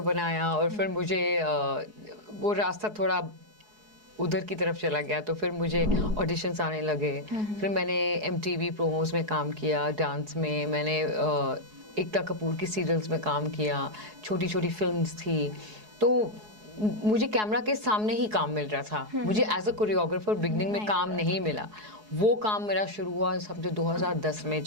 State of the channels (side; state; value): left; late; 4.7 ms